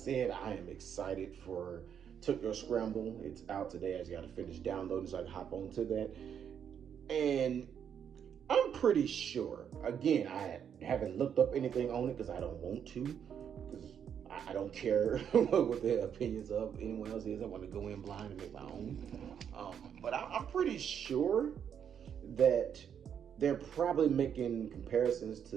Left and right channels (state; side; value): quieter; left; 8.2 dB